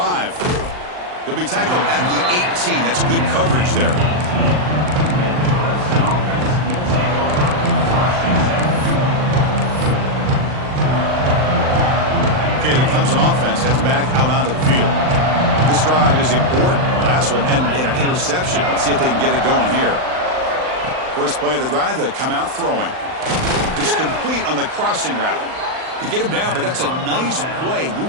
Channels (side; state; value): left; late; 39 ms